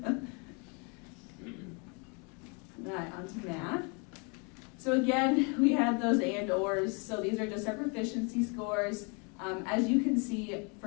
All right, on to math. So again, we had those and/ors. So these are just our proficiency scores. As you can see,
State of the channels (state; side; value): quieter; right; 33.9 dB